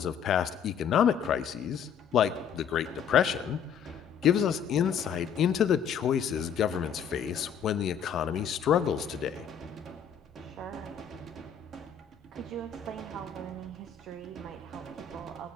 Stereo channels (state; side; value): quieter; right; 7.7 dB